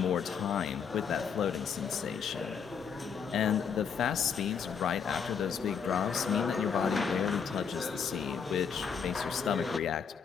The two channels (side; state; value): right; quieter; 6.6 dB